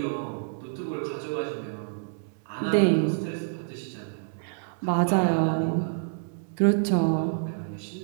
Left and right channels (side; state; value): left; silent; digital silence